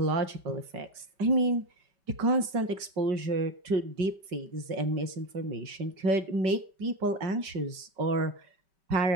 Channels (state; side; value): late; left; 5.2 ms